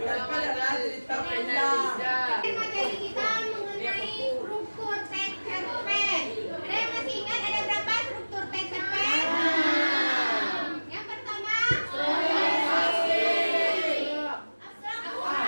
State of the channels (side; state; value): both; inverted; correlation -1.00